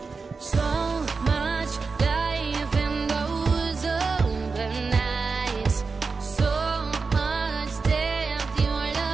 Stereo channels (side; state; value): left; quieter; 4.6 dB